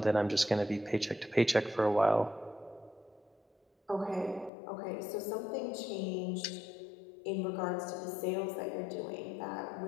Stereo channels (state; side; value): drops out; right; at 4.5 s